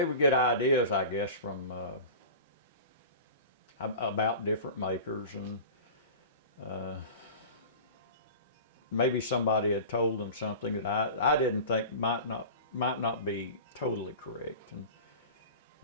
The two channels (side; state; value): both; inverted; correlation -0.35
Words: would get ideas, I guess, from about different makers, and maybe somebody had told them something that I didn't think might not be totally correct. And